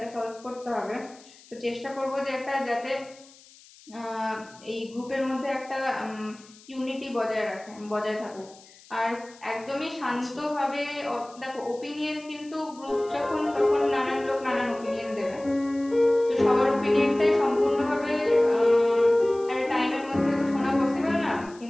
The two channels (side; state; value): left; noise; hiss, 24 dB below the sound